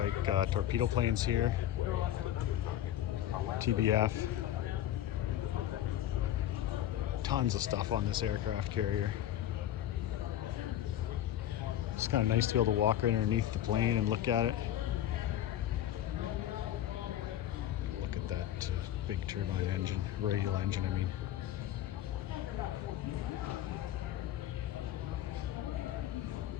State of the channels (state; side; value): quieter; right; 12.0 dB